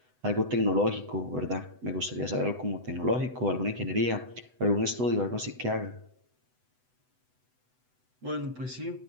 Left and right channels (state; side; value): late; left; 8.0 ms